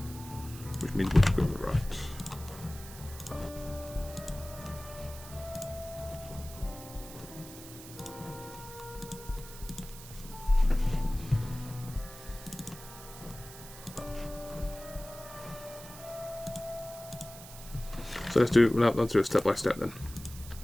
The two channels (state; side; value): noise; right; hiss, 15 dB below the sound